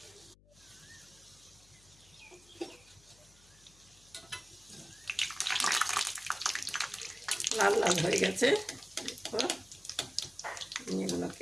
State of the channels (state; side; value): noise; left; hum, 27 dB below the sound